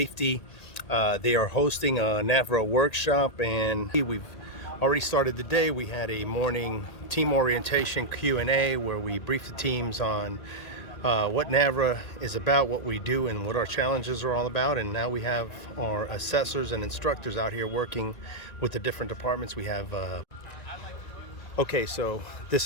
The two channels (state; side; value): late; right; 1.8 ms